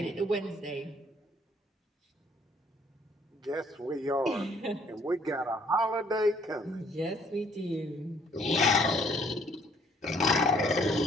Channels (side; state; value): both; normal; correlation 0.62